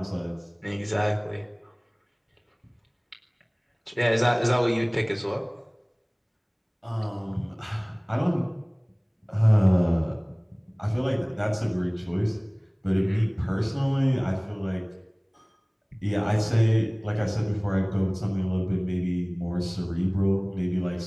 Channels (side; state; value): both; identical; correlation 1.00